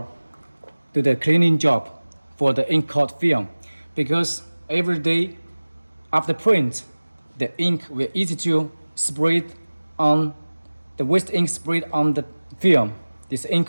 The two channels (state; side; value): inverted; both; correlation -1.00